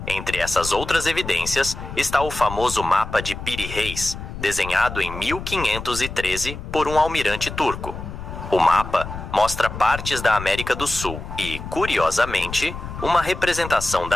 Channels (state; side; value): noise; left; rumble, 9 dB below the sound